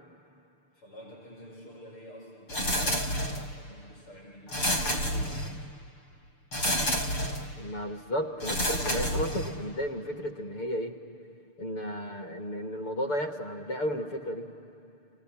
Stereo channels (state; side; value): late; right; 6.8 ms